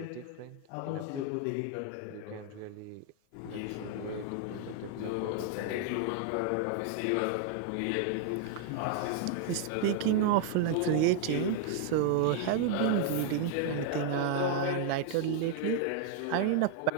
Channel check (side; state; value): both; different; correlation 0.00